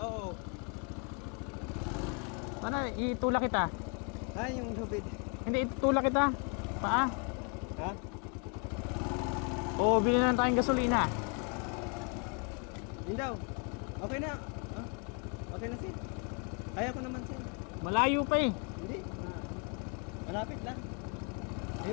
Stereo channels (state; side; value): quieter; right; 37.6 dB